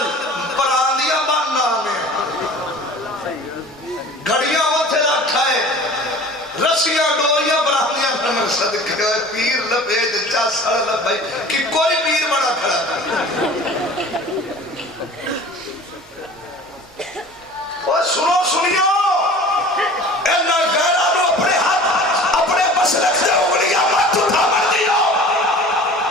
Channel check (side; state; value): both; normal; correlation 0.43